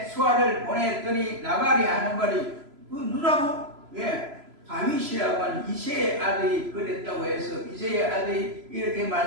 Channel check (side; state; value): left; late; 3.0 ms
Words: 수하를 보냈더니 나발이 하는 말이 그 누라고? 다윗이라고 하는 이새의 아들이 그랬다고 해서 이새의 아들이 이렇게